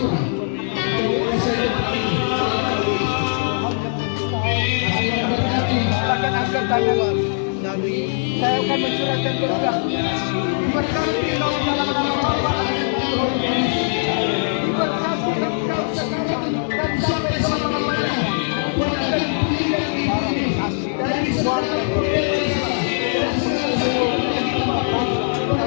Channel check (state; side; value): silent; right; digital silence